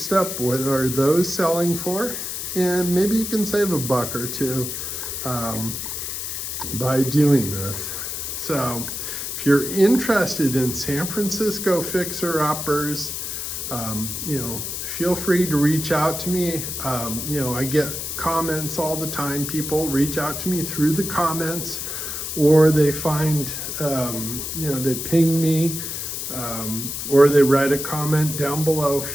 up, what are those selling for, and maybe you can save $1 or $2 by doing this. So if you're interested in San Francisco fixer-uppers, feel free to reach out to me. I get comments all the time. People reach out to me through the comments, or they find, they ping me, or they write a comment down below.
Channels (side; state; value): left; noise; hiss, 5 dB below the sound